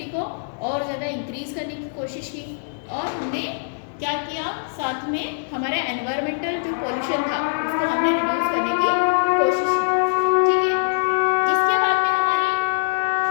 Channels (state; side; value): silent; right; 64 dB below the other